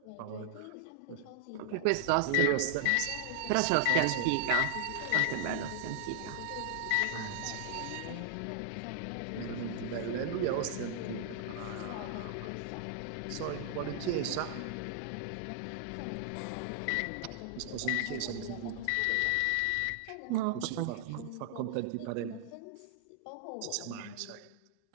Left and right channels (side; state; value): both; different; correlation 0.00